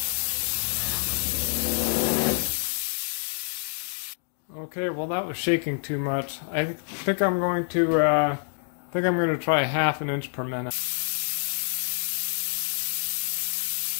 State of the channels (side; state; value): right; silent; digital silence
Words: Okay, well that was shaking too much. I think I'm going to try 1/2 inch per minute.